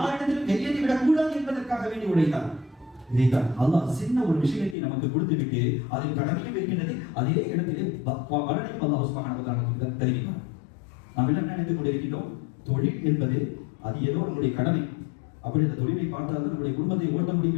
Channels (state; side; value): drops out; right; at 4.8 s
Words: கையேந்தி விடக்கூடாது என்பதற்காக வேண்டி உழைத்தார். இதைத்தான் அல்லாஹ் சின்ன ஒரு விஷயத்தை நமக்கு கொடுத்து விட்டு அதில் கடமையும் இருக்கின்றது, அதே இடத்திலே பலனையும் அல்லாஹ் சுப்ஹானஹு வ தஆலா தருகிறார். நாம் எல்லாம் நினைத்துக் கொண்டிருக்கின்றோம், தொழில் என்பது அது ஏதோ நம்முடைய கடமை, அப்படி அந்த தொழிலை பார்த்தால் நம்முடைய குடும்பத்தை ஓட்ட